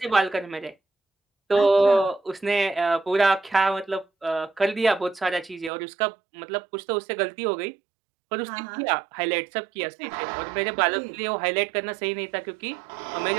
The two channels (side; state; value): left; drops out; at 5.7 s